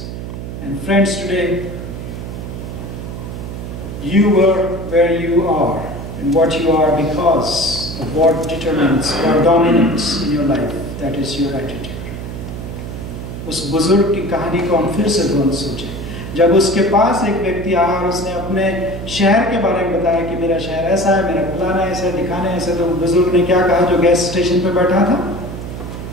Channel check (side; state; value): right; noise; hum, 8 dB below the sound